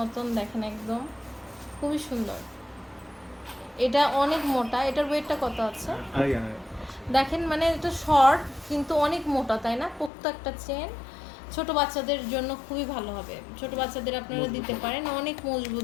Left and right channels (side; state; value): right; drops out; at 10.1 s